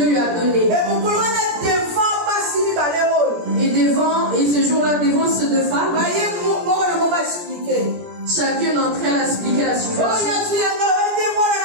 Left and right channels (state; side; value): late; left; 17 ms